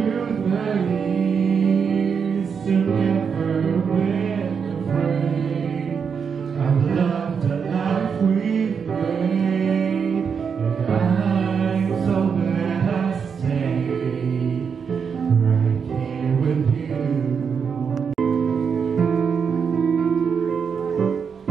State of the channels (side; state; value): left; quieter; 6.4 dB